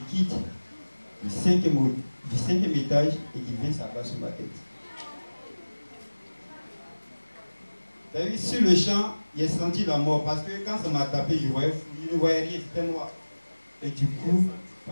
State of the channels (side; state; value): both; inverted; correlation -1.00